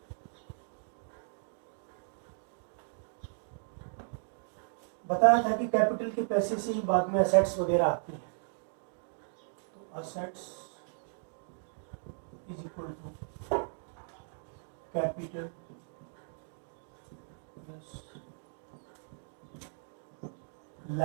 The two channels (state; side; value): silent; left; digital silence